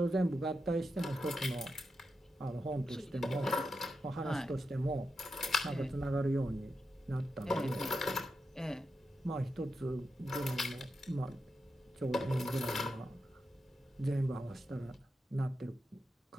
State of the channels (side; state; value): both; normal; correlation 0.87